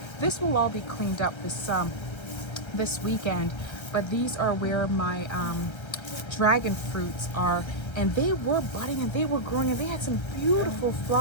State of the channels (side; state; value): right; late; 1.2 ms